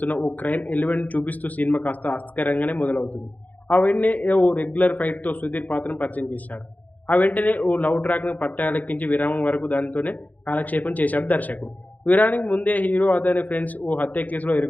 ఓ క్రైమ్ ఎలిమెంట్ చూపిస్తూ సినిమా కాస్త ఆసక్తికరంగానే మొదలవుతుంది. ఆ వెంటనే ఓ రెగ్యులర్ ఫైట్‌తో సుధీర్ పాత్రను పరిచయం చేశాడు. ఆ వెంటనే ఓ లవ్ ట్రాక్‌ను పట్టాలెక్కించి విరామం వరకు దానితోనే కాలక్షేపం చేశాడు దర్శకుడు. విరామానికి ముందే హీరో అతని ఫ్రెండ్స్ ఓ హత్య కేసులో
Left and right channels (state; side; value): late; right; 0.080 ms